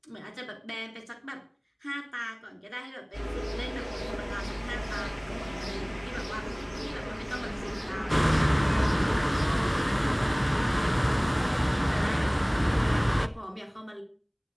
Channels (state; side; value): identical; both; correlation 1.00